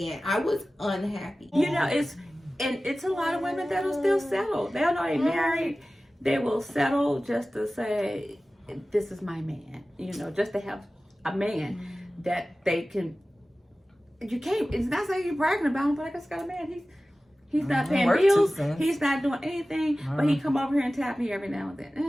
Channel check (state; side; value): normal; both; correlation 0.96